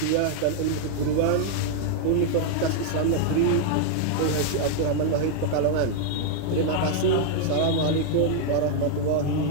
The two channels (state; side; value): different; both; correlation 0.00